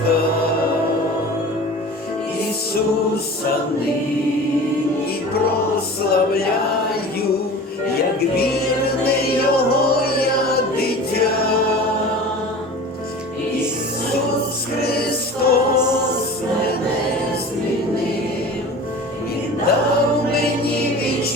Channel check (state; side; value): normal; both; correlation 0.38